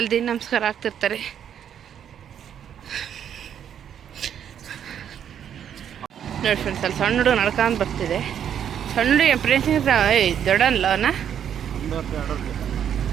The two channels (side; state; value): left; quieter; 9.1 dB